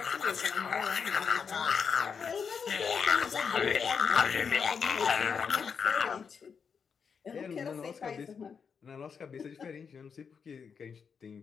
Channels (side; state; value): right; quieter; 6.3 dB